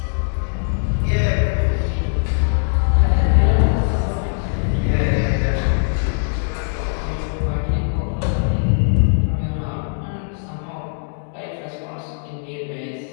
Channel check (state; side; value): silent; right; digital silence